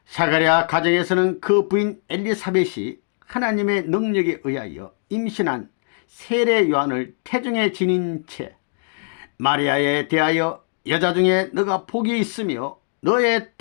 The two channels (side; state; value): right; silent; digital silence